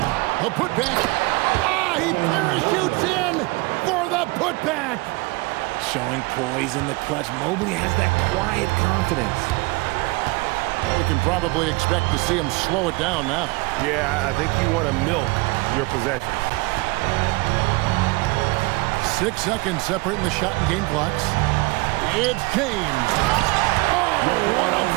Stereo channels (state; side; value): quieter; left; 24.5 dB